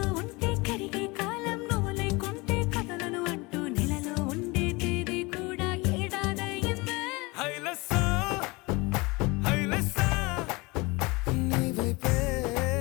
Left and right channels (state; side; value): quieter; right; 24.9 dB